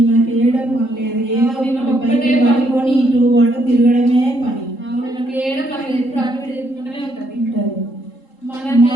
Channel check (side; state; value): right; late; 3.7 ms